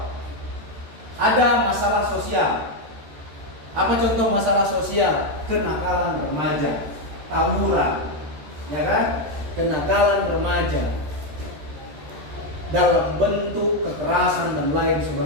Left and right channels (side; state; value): left; late; 13 ms